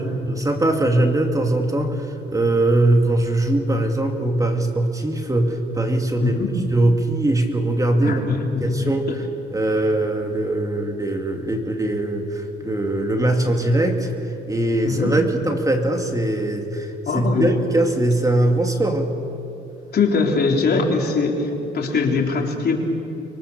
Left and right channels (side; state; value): both; normal; correlation 0.74